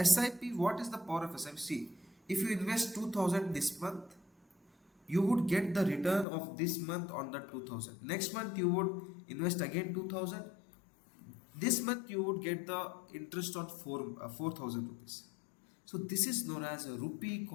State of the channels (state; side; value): drops out; right; at 6.2 s